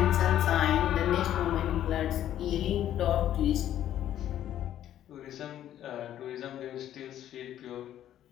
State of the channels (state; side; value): quieter; right; 11.6 dB